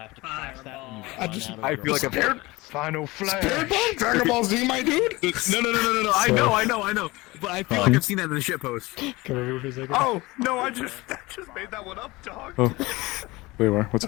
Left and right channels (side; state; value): right; quieter; 21.7 dB